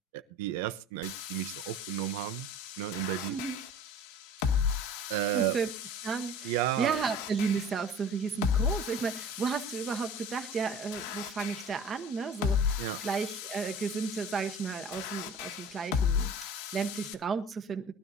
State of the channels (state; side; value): normal; both; correlation 0.43